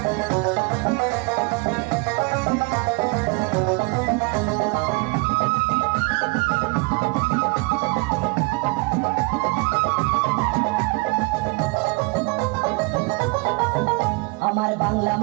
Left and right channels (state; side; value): quieter; left; 28.8 dB